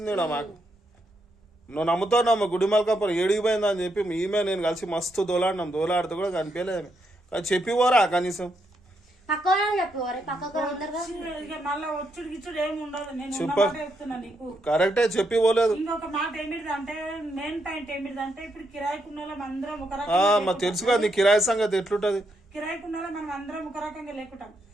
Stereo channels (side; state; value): both; normal; correlation 0.79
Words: మాకు నువ్వు నమ్ముతావు నమ్మ గుడిమల్కాపురం ఏడిగిపోయిందా అని చెప్పి ఈమె నేను కలిసి మస్తు దోలాడితే కూడా కనిపించలేదు కానీ చెప్పి పోరా కనీసం కరెక్టే చెప్పి పోలేదు ఇంకొక మాట ఏమిటిదంటే మెయిన్ పాయింట్ ఏమిటిదంటే ఇప్పుడు కిరాయికున్న అందరం ఒక తెలుసు కదా నీ కిరాయి సంగతి ఎట్లుంటది కిరాయికున్న మనం అందరం ఒక రకంగా లేకుంటాం